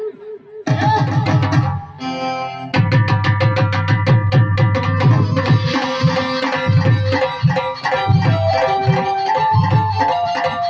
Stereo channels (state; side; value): identical; both; correlation 1.00